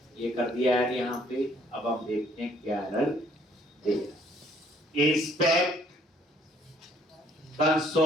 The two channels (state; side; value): normal; both; correlation 0.62